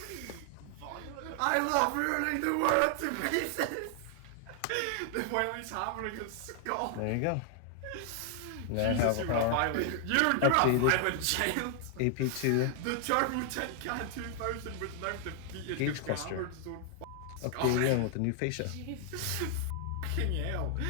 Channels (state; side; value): different; both; correlation 0.00